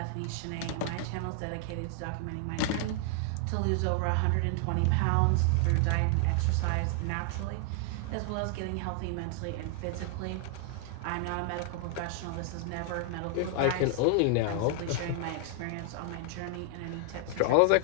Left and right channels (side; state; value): both; different; correlation 0.00